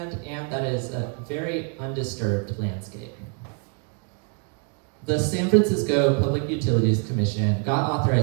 and that is a very undisturbed landscape. The San Francisco Public Utilities Commission got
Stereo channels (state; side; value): quieter; left; 38.2 dB